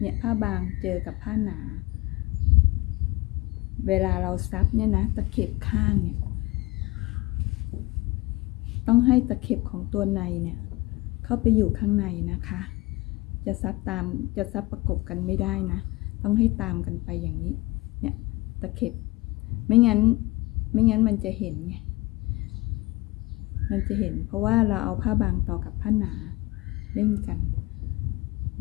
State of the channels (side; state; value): right; quieter; 21.3 dB